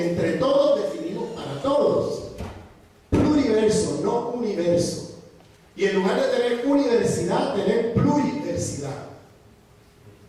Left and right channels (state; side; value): identical; both; correlation 1.00